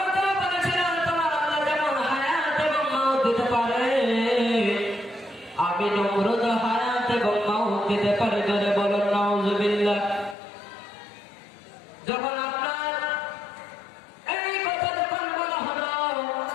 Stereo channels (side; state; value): right; drops out; at 10.4 s